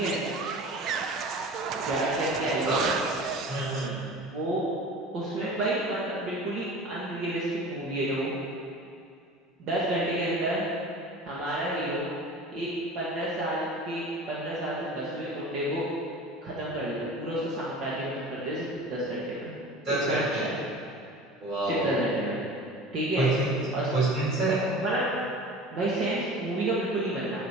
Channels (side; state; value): both; normal; correlation 0.38